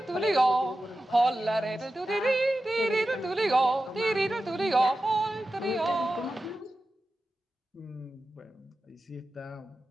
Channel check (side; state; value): both; normal; correlation 0.93